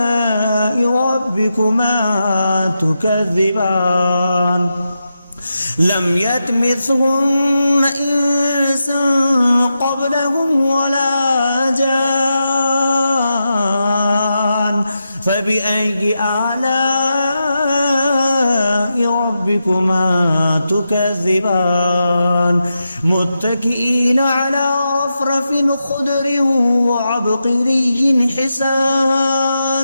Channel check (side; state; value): both; inverted; correlation -0.88